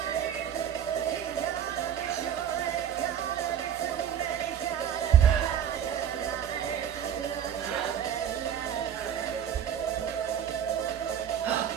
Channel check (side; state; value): left; quieter; 9.2 dB